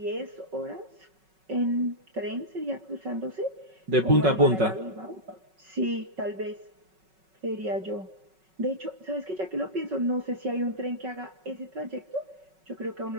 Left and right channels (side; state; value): left; late; 5.4 ms